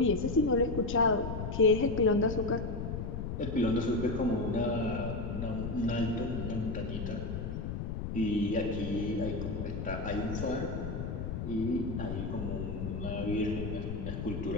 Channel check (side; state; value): left; noise; rumble, 4 dB below the sound